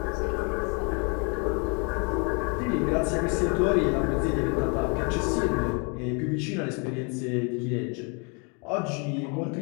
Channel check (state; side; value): quieter; right; 34.9 dB